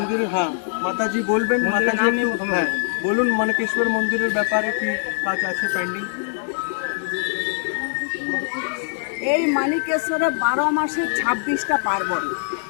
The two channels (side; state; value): right; silent; 64 dB below the other